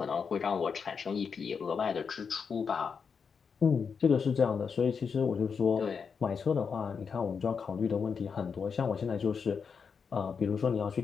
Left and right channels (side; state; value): right; quieter; 6.0 dB